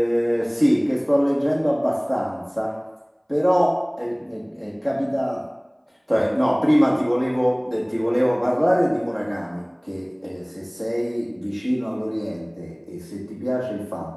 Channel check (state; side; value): identical; both; correlation 1.00